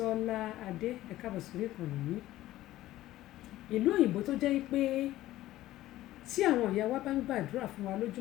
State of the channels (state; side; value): quieter; right; 15.3 dB